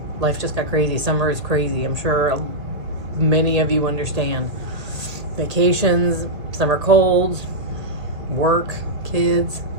life just got crazy. Summer is crazy. I'm sure many of you understand. Vacations, summer colds, work, kids.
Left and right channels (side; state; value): left; late; 1.6 ms